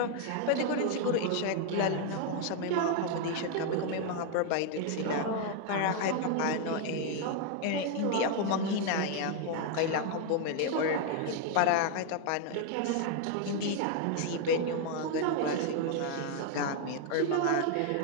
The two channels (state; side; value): different; both; correlation 0.00